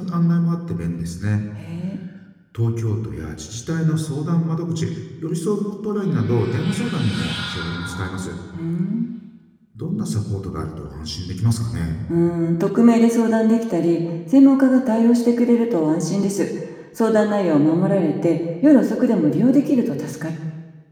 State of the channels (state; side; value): identical; both; correlation 1.00